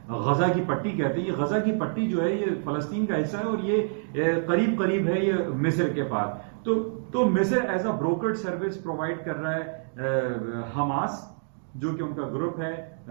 غزہ کی پٹی کہتے ہیں, یہ غزہ کی پٹی جو ہے یہ فلسطین کا حصہ ہے اور یہ قریب قریب ہے یہ مصر کے پاس. تو مصر ایز اے بروکرڈ سروس پرووائڈ کر رہا ہے حماس, جو کہ ان کا گروپ ہے.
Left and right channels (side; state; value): left; silent; digital silence